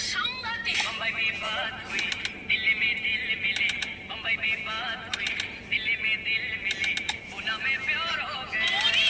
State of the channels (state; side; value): identical; both; correlation 1.00